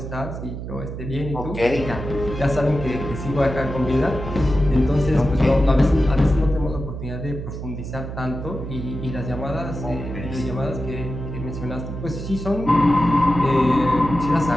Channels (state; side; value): noise; right; hum, 8 dB below the sound